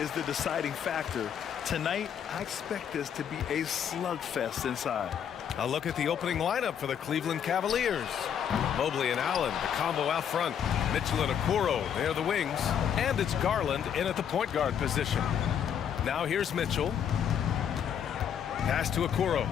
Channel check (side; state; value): right; quieter; 8.6 dB